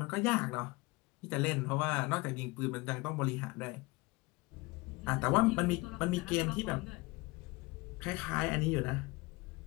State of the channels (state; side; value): quieter; right; 24.0 dB